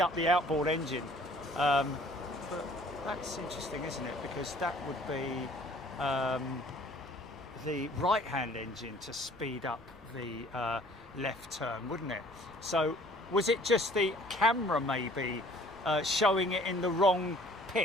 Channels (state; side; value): noise; right; rumble, 24 dB below the sound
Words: up the outboard engine. But that's interesting, isn't it? Because that would be the right-hand engine to speed up the left turn, wouldn't it? So was it just the camera maybe showing it in the wrong